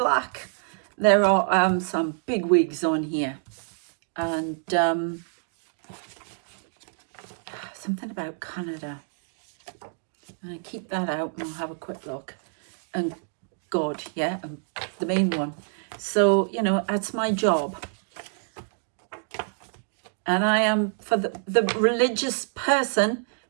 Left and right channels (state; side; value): silent; left; digital silence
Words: There are some big wigs on here. And something about Canada. I'm going to keep that out and we'll have a quick look. And God, yeah, the main one. So, you know, that's my job. And I am, for the religious person